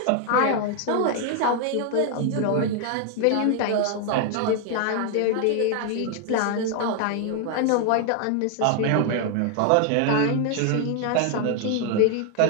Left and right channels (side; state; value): both; different; correlation 0.00